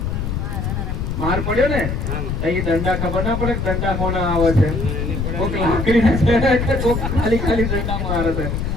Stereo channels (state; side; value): noise; left; rumble, 2 dB below the sound